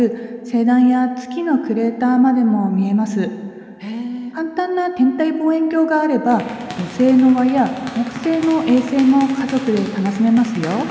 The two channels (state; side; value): identical; both; correlation 1.00